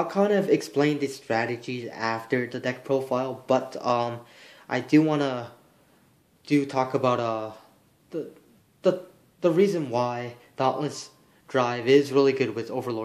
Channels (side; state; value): both; identical; correlation 1.00